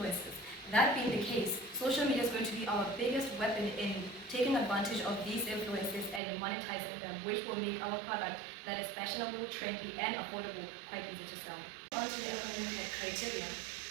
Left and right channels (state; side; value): drops out; left; at 6.2 s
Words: That being the case, social media is going to be our biggest weapon in taking advantage of these influences and monetizing them, which will make our product that is fashionable, trendy, and affordable quite easy to sell. On to the economic criteria.